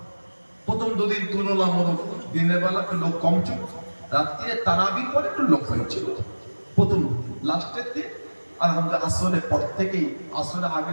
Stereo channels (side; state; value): both; inverted; correlation -1.00